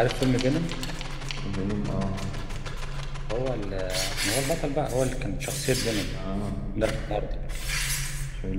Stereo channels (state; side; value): identical; both; correlation 1.00